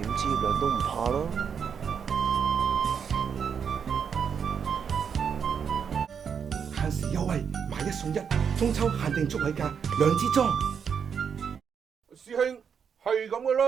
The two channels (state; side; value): quieter; left; 7.0 dB